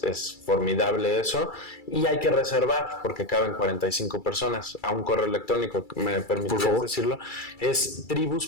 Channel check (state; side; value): late; right; 2.3 ms